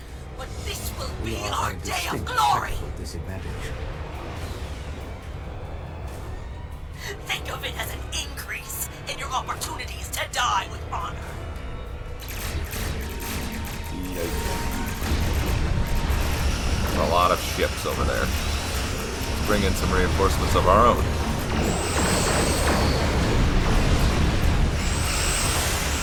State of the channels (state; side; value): identical; both; correlation 1.00